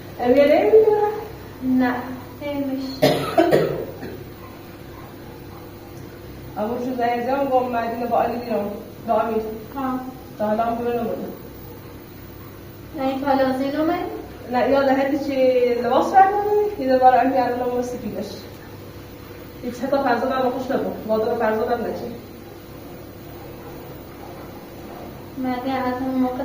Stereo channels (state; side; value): identical; both; correlation 1.00